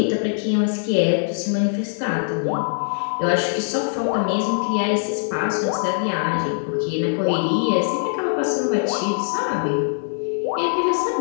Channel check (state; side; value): silent; right; 64 dB below the other